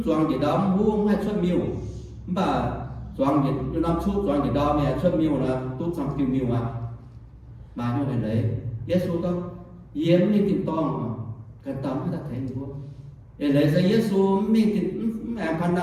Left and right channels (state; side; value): identical; both; correlation 1.00